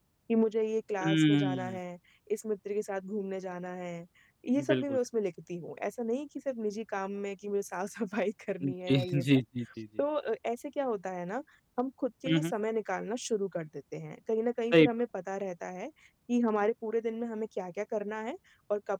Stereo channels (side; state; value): both; identical; correlation 1.00